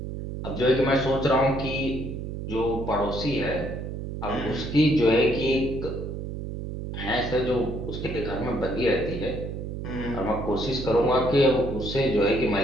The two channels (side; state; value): right; noise; hum, 6 dB below the sound